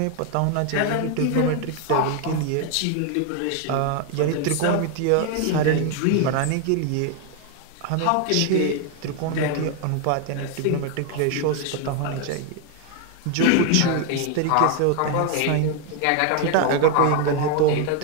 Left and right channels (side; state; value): both; different; correlation 0.00